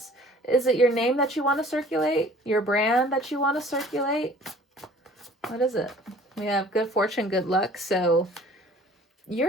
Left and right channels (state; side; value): normal; both; correlation 0.51